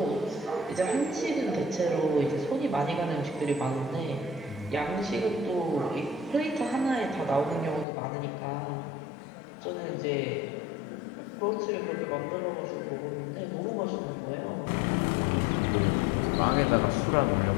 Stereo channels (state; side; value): drops out; right; at 7.9 s